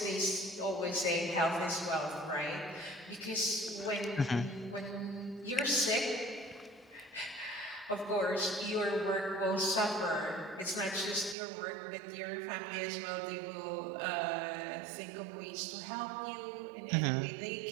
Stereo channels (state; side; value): drops out; left; at 11.4 s